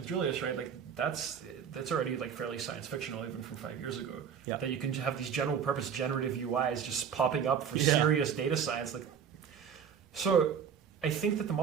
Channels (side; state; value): left; quieter; 7.5 dB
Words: Julius, right? Like that's already like fairly science fictional even from 5 years ago. That you can have these general purpose generative UIs just popping up for serious data science. So I think that the